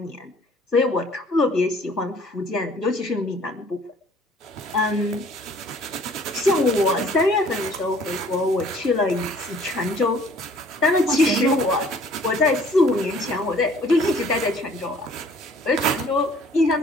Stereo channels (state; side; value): normal; both; correlation 0.55